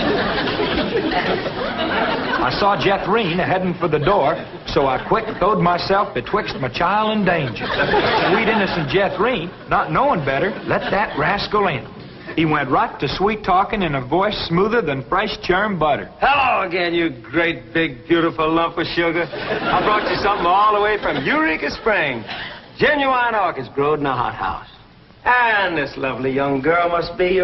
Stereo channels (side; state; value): both; identical; correlation 1.00